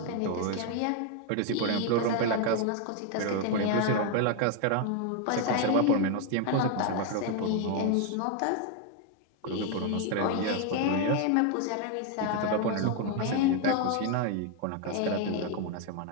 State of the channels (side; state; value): both; different; correlation 0.01